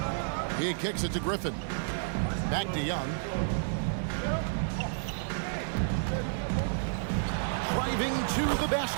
He kicks it to Griffin. Back to Young. Driving to the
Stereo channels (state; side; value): silent; left; 55 dB below the other